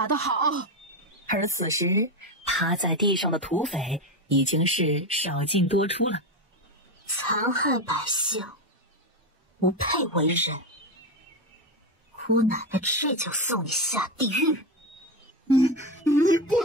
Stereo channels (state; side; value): normal; both; correlation 0.14